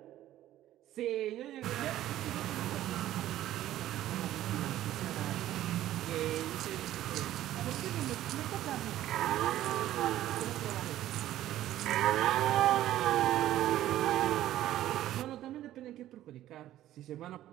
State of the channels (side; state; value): left; quieter; 13.5 dB